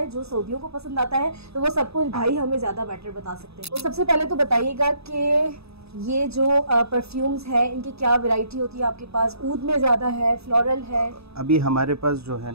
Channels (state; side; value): late; left; 0.78 ms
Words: जो सऊदियों को पसंद आता है। तो वो सब कुछ भाई हमें ज़्यादा बेटर बता सकते हैं। तो सबसे पहले तो बताइएगा कि ये जो परफ्यूम्स हैं इनकी क्या वैरायटी होती है आपके पास? ऊद में ज़्यादा है, फ्लोरल है? अभी हमारे पास जो है